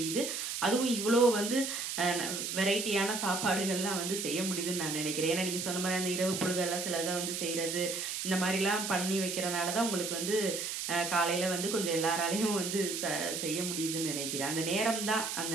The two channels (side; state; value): right; noise; hiss, 3 dB below the sound